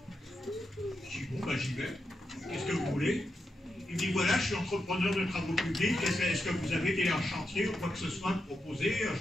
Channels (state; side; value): normal; both; correlation 0.86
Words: Je dis, bon, bah j'y vais. Qu'est-ce que vous voulez? Il me dit, voilà, je suis entrepreneur de travaux publics, est-ce que vous avez des chantiers ou quoi que ce soit à proposer?